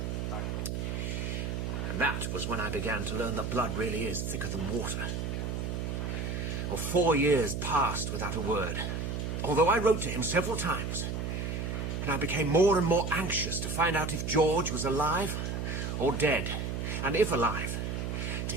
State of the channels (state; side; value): noise; right; hum, 2 dB below the sound